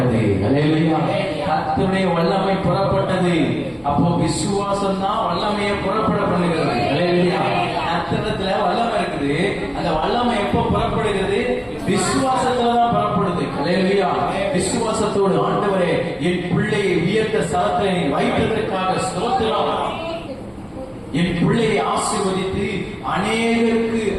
அல்லேலூயா. கர்த்தருடைய வல்லமை புறப்பட்டது. அப்போ விசுவாசம் தான் வல்லமையை புறப்பட பண்ணுகிறது. அல்லேலூயா. கர்த்தரிடத்துல வல்லமை இருக்குது. அந்த வல்லமை எப்போ புறப்படுகிறது? விசுவாசத்துல தான் புறப்படுது. அல்லேலூயா. விசுவாசத்தோடு ஆண்டவரே, என் பிள்ளையை உயர்த்த ஸ்தலத்தை வைத்ததற்காக ஸ்தோத்திரம். என் பிள்ளையை ஆசீர்வதித்து அநேகருக்கு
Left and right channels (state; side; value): identical; both; correlation 1.00